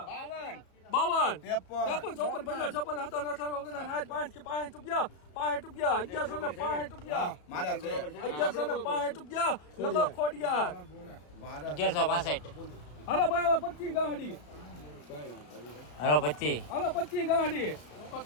54 55 56 57 58 રૂપિયા 1160 રૂપિયા મારા છે 1160 રૂપિયા લખો ખોડિયાર 1165 હાલો ભાઈ 25 ગાડી હાલો 25 હાલો 25 ગાડી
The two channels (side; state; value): right; late; 34 ms